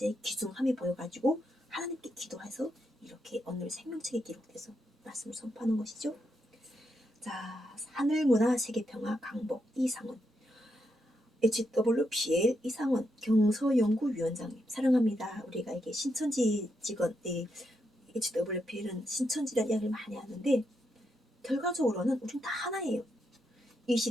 귀중함이 보여가지고 하나님께 기도해서 이렇게 오늘 생명책에 기록돼서 말씀을 선포하는 것이죠. 자, 하늘문화 세계평화 강복 이상원, HWPL 이상원 경서연구위원장님 사랑합니다. 우리가 이게 신천지 직원, HWPL은 신천지라는 이야기를 많이 하는데 결과적으로는 우리는 다 하나예요. 이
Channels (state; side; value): normal; both; correlation 0.82